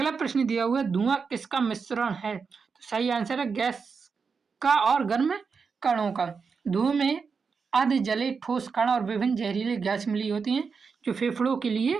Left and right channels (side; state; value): left; quieter; 5.4 dB